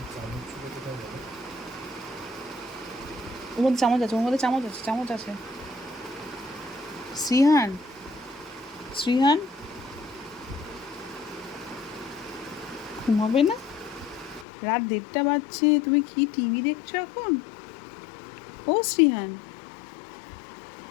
ওর মধ্যে চামচ আছে, ওর মধ্যে চামচ আছে, চামচ আছে। শ্রীহান, শ্রীহান, ঘুমাবে না? রাত 1:30 বাজছে, তুমি কি টিভি দেখছো এখন? ও শ্রীহান,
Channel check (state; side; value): drops out; right; at 14.5 s